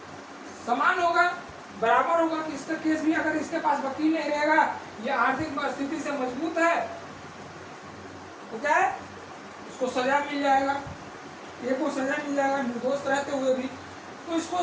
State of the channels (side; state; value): both; identical; correlation 1.00